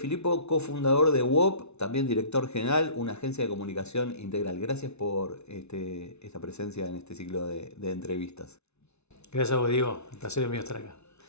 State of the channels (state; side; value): late; right; 0.81 ms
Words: cofundador de WOP, también director general, una agencia de comunicación integral. Gracias por esta presencia en este ciclo de entrevistas. Gracias a vos, Diego. El placer es mío estar acá.